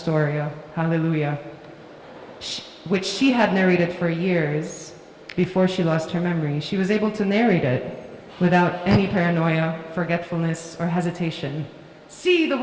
Hallelujah, which she had narrated for years before she lost her memory, she was able to narrate it without any paranoia, forgetfulness, or hesitation. See the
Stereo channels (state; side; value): identical; both; correlation 1.00